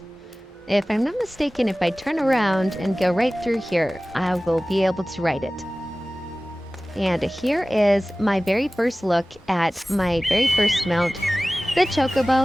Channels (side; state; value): both; normal; correlation 0.97